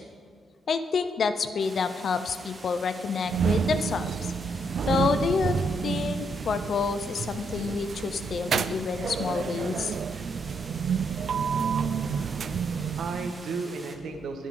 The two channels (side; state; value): both; normal; correlation 0.75